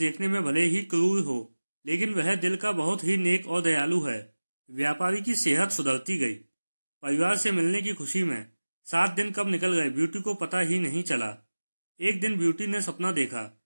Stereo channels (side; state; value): both; inverted; correlation -1.00